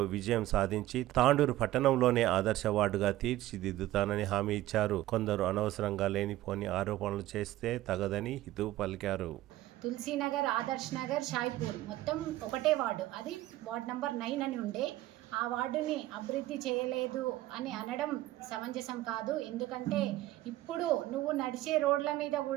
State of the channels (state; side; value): quieter; left; 15.6 dB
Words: విజయం సాధించి తాండూరు పట్టణంలోనే ఆదర్శ వార్డుగా తీర్చిదిద్దుతానని హామీ ఇచ్చారు. కొందరు అనవసరంగా లేనిపోని ఆరోపణలు చేస్తే తగదని హితవు పలికారు. తులసీనగర్, ఆదర్శ్ నగర్, షాయిపూర్ మొత్తం ఒకటే వార్డు, అది వార్డు నంబర్ 9 అని ఉండే. ఆ వార్డుని అభివృద్ధి చేయలేదు అని అనడం సమంజసం కాదు. ఎందుకంటే ఇప్పుడు నువ్వు నడిచే రోడ్ల మీద